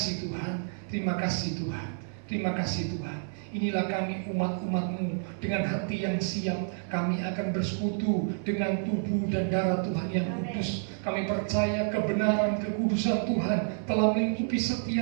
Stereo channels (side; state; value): left; silent; 57 dB below the other